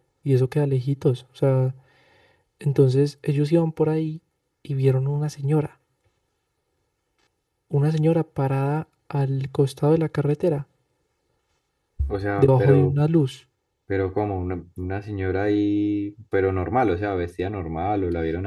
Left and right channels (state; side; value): identical; both; correlation 1.00